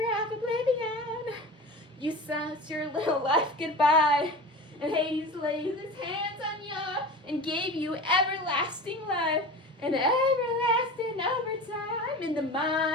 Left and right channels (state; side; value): normal; both; correlation 0.33